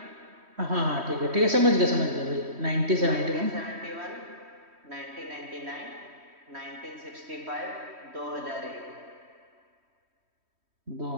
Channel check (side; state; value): left; late; 3.1 ms